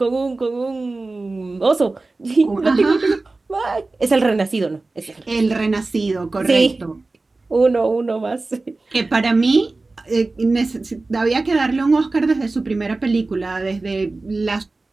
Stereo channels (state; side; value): quieter; left; 3.4 dB